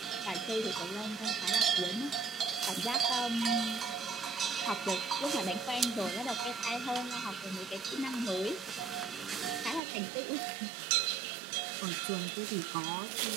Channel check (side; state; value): left; drops out; at 9.8 s